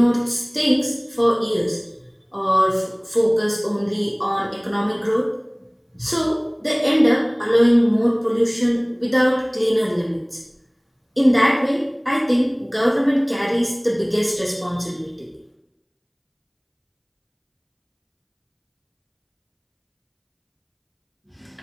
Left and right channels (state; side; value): identical; both; correlation 1.00